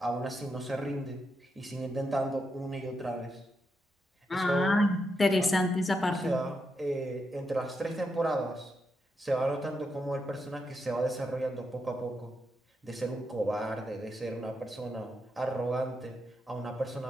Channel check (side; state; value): both; normal; correlation 0.83